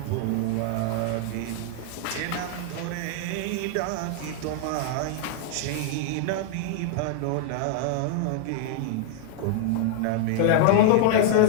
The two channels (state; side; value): different; both; correlation 0.00